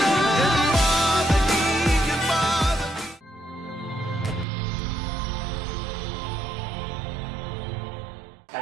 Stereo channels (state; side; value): drops out; left; at 4.5 s